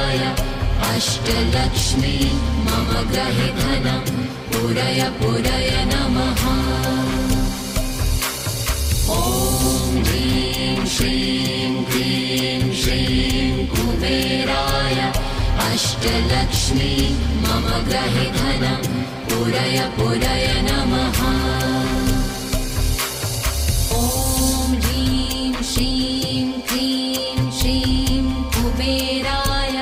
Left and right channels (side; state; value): both; identical; correlation 1.00